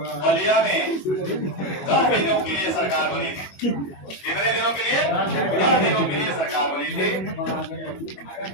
में 10 दिनों के लिए सरकार बनी थी। कितने दिनों के लिए? 10 दिनों के लिए सरकार बनी थी,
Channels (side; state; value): right; late; 21 ms